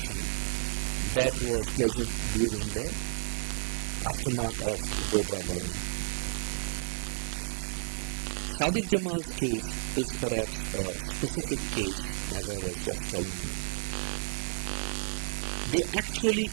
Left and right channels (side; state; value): left; silent; 57 dB below the other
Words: that was present during the aftermath of Godhra burning. Sadiq Jamal's case is perhaps a specific case, as I was just telling you. They actually